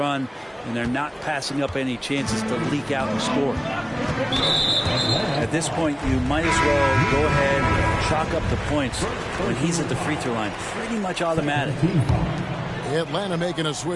and they're not passing up any chances to leak out and score. At this point, you might as well go ahead and chalk up the points when he's at the free throw line. Pretty much automatic. Atlanta making a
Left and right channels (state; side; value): identical; both; correlation 1.00